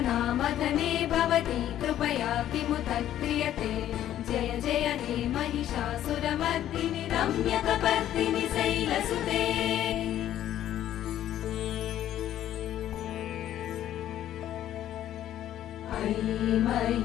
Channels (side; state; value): right; quieter; 11.9 dB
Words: భవతి కృపయా కిముత క్రియతే జయ జయ హే మహిషాసురమర్దిని రమ్యకపర్దిని శైలసుతే మయి